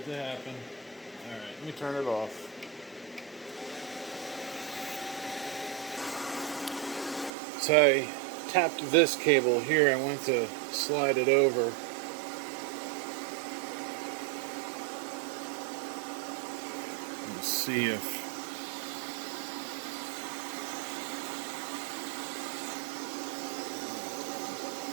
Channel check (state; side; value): drops out; left; at 7.3 s